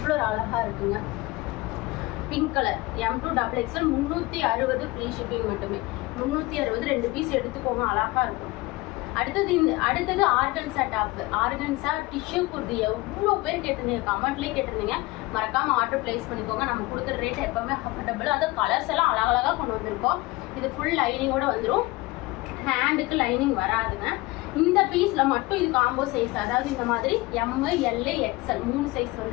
ஒரு அழகாக இருக்குங்க. Pink colour M2 XXL 360 free shipping மட்டுமே. 360 2 பீஸ் எடுத்துக்கோங்க, அழகாக இருக்கும். அடுத்தது organza top. Organza tissue kurti எவ்வளோ பேர் கேட்டிருந்தீங்க, கமெண்ட்லேயே கேட்டிருந்தீங்க. மறக்காம ஆர்டர் பிளேஸ் பண்ணிக்கோங்க. நம்ம கொடுக்குற ரேட் எப்பவுமே அஃபோர்டபுள். அது கலர்ஸ் எல்லாம் அழகழகாக கொண்டு வந்திருக்கோம். இது ஃபுல் லைனிங்கோட வந்துடும், ஹேண்டுக்கு லைனிங் வராதுங்க. இந்த பீஸ்ல மட்டும் இது காம்போ சைஸ், அதாவது இந்த மாதிரி ML XL 3 சைஸ்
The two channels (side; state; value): right; quieter; 21.3 dB